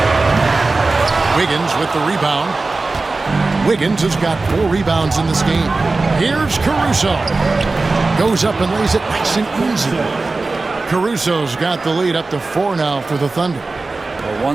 Wiggins with the rebound. Wiggins has got 4 rebounds in this game. Here's Caruso. Goes up and lays it nice and easy. Caruso's got the lead up to 4 now for the Thunder. Well,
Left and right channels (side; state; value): left; quieter; 3.6 dB